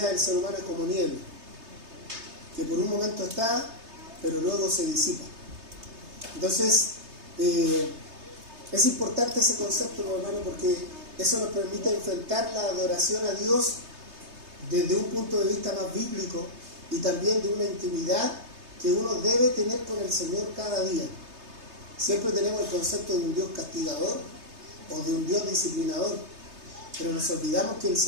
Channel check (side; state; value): left; late; 3.3 ms